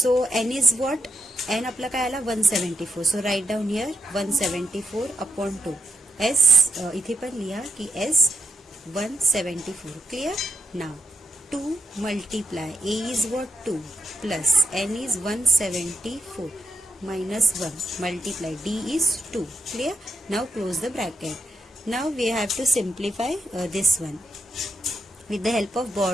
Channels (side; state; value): both; normal; correlation 0.82